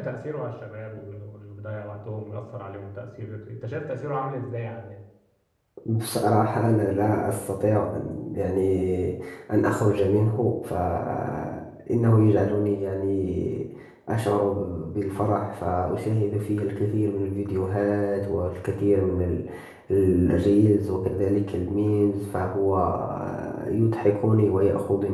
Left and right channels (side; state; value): both; identical; correlation 1.00